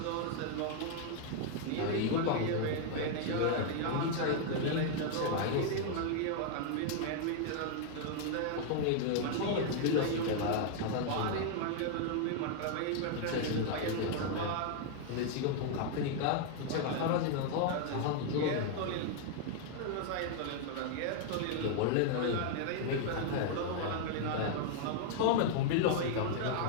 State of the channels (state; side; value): different; both; correlation 0.00